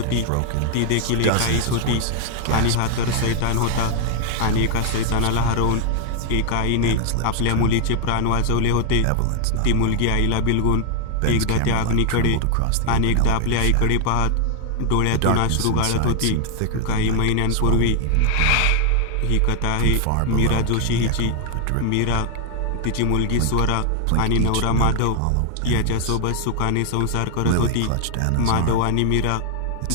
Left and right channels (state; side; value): different; both; correlation 0.00